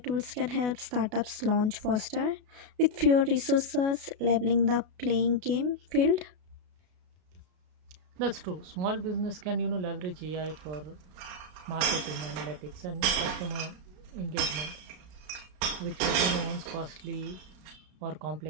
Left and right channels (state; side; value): late; left; 33 ms